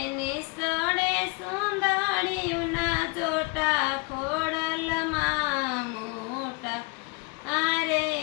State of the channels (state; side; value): quieter; right; 28.8 dB